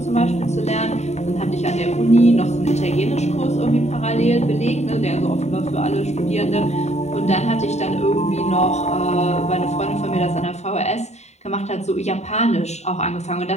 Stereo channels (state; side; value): late; right; 0.32 ms